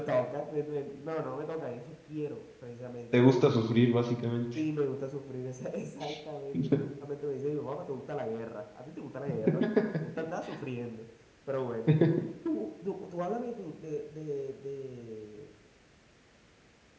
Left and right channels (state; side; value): identical; both; correlation 1.00